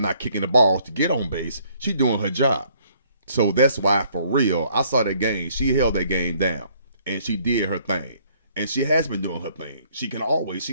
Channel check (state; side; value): inverted; both; correlation -0.64